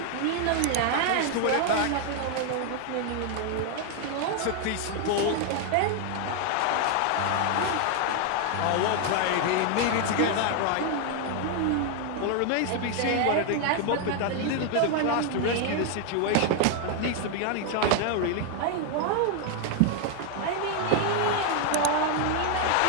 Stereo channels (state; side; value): different; both; correlation 0.00